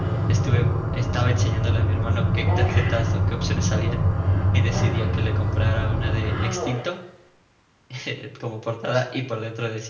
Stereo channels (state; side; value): identical; both; correlation 1.00